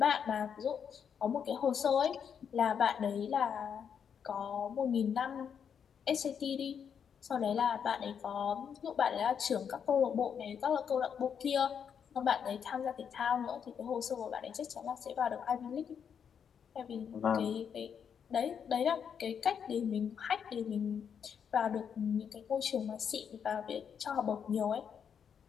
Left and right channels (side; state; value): right; quieter; 7.5 dB